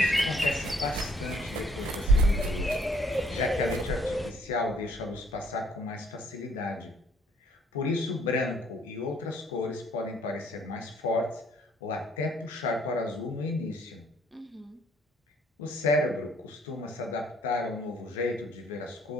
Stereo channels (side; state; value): both; normal; correlation 0.62